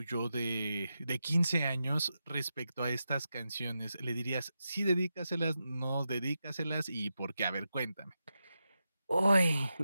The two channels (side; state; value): both; inverted; correlation -0.89